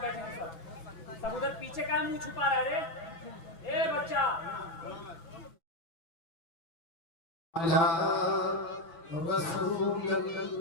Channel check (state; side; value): late; right; 6.1 ms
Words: बैठेंगे? सब उधर पीछे का मुंह छुपा रहा है। ए बच्चा